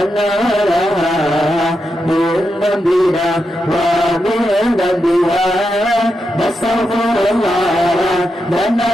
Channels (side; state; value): both; normal; correlation 0.86